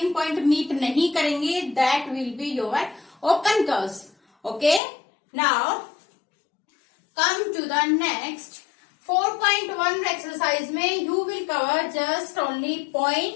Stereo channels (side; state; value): right; drops out; at 4.8 s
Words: point meet नहीं करेंगे that will be your open curves. Okay, now come to the next 4.1 exercise में you will cover just only